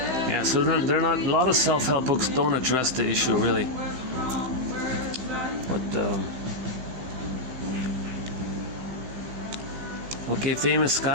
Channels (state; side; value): late; left; 16 ms